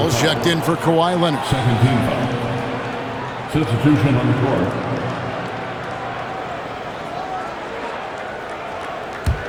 checked in for Kawhi Leonard. Second team foul. Substitution on the court.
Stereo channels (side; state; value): both; identical; correlation 1.00